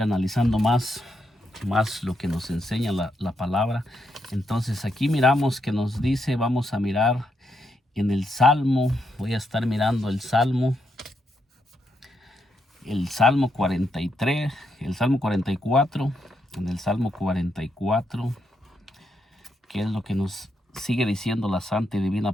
más lo que nos enseña la palabra. Entonces aquí miramos que nos dice, vamos a mirar en el Salmo, voy a estar mirando el Salmo 43, el Salmo 44, en el Salmo 44, que es lo que nos sigue diciendo la santa y divina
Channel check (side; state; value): both; normal; correlation 0.80